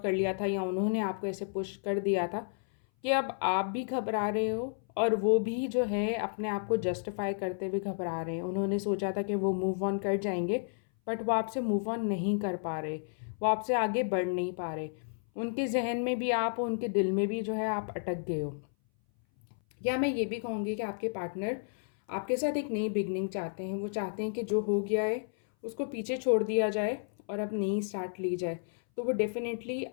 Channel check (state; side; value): silent; right; 57 dB below the other